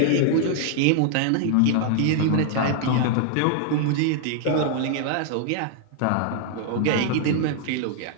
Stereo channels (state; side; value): different; both; correlation 0.00